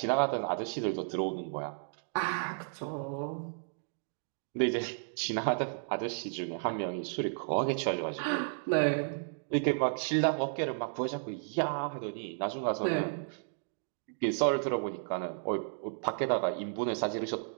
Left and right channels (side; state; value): left; silent; digital silence